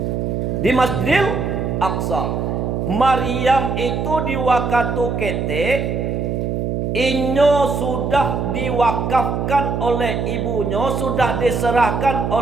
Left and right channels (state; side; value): noise; right; hum, 1 dB below the sound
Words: Di Masjidil Aqsa. Maryam itu di waktu ketik inyo sudah diwakafkan oleh ibunya, sudah diserahkan